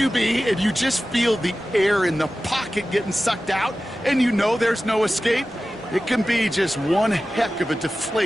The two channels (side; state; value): both; normal; correlation 0.95